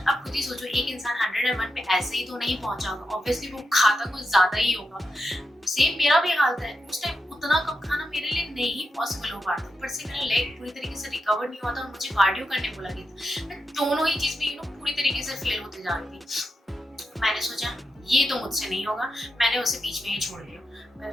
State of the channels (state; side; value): normal; both; correlation 0.87